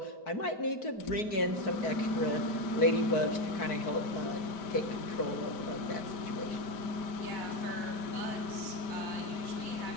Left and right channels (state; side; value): late; right; 4.6 ms